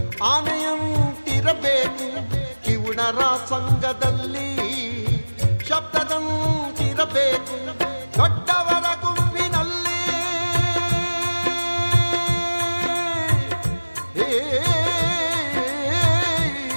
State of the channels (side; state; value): both; inverted; correlation -1.00